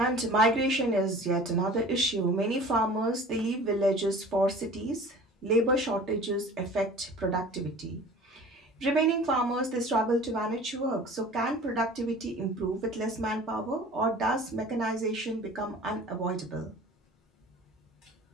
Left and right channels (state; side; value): normal; both; correlation 0.43